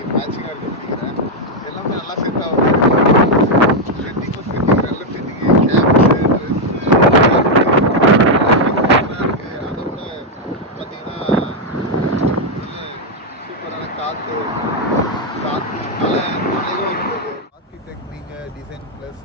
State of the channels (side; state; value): both; normal; correlation 0.01